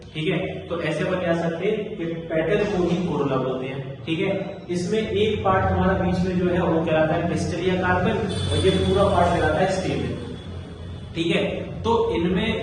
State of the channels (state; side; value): identical; both; correlation 1.00